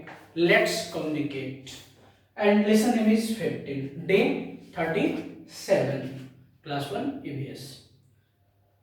Let's communicate. And lesson name is 15, day 37, class 1 ABS.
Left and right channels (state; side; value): identical; both; correlation 1.00